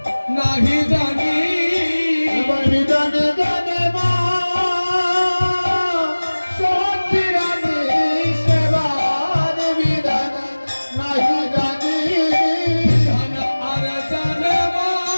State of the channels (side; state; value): both; inverted; correlation -1.00